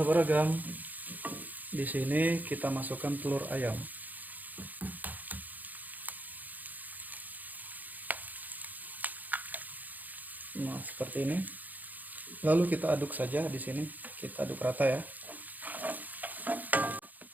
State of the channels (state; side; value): late; left; 0.082 ms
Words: di sini kita masukkan telur ayam. Nah, seperti ini. Lalu kita aduk saja di sini, kita aduk rata ya.